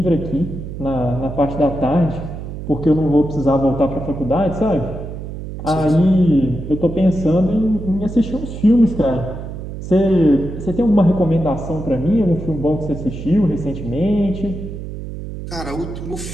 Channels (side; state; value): right; noise; hum, 9 dB below the sound